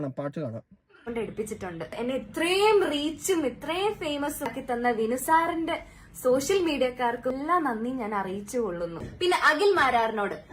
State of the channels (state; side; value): identical; both; correlation 1.00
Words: പാട്ട് കാണാം. എടുപ്പിച്ചിട്ടുണ്ട്. എന്നെ ഇത്രയും റീച്ചും ഇത്രയും ഫേമസ് ആക്കി തന്ന വിനു സാറിന്റെ സോഷ്യൽ മീഡിയക്കാർക്കും എല്ലാം നന്ദി ഞാൻ അറിയിച്ചു കൊള്ളുന്നു. പിന്നെ അഖിൽ മാരാറിനോട്,